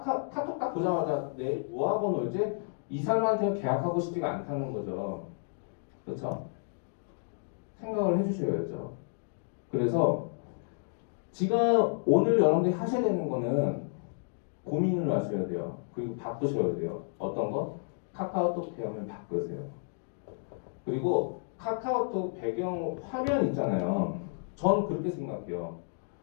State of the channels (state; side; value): silent; right; digital silence